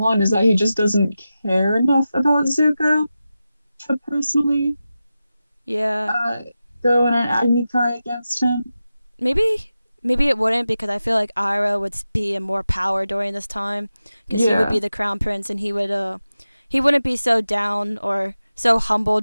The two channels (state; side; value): inverted; both; correlation -0.93